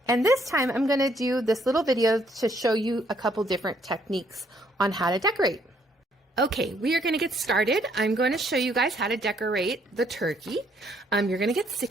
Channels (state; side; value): normal; both; correlation 0.68